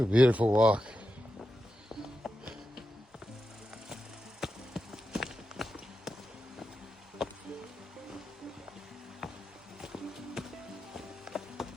a beautiful walk.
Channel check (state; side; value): normal; both; correlation 0.89